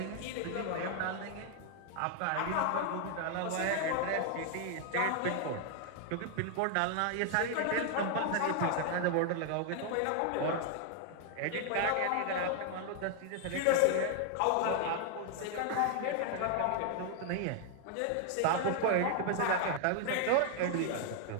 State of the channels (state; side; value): different; both; correlation 0.00